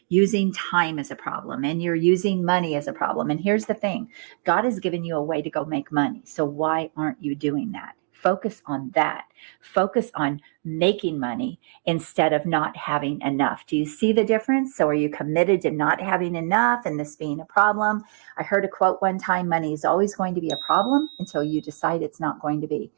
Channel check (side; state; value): left; silent; digital silence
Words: using time as a problem and you're using money as a problem. And here's the thing, God has given you a way to go make money. So why aren't you doing that? Focus on that. Focus on making money instead of not having enough. Do you see the difference? So are you committed to not having enough and this being a problem? I heard a quote one time, money is always going to be a problem until you decide it's not going to be.